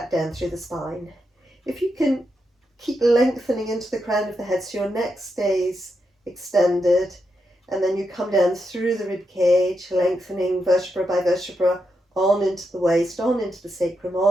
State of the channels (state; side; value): normal; both; correlation 0.84